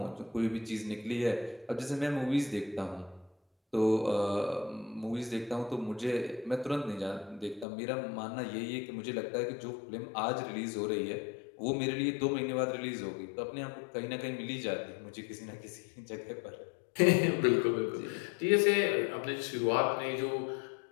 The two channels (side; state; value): right; drops out; at 7.7 s